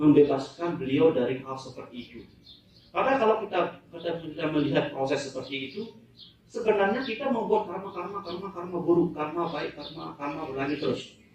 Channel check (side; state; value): both; identical; correlation 1.00